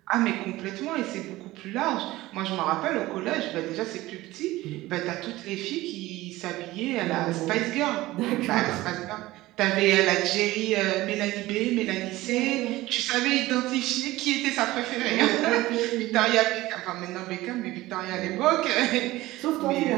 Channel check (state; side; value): quieter; left; 17.9 dB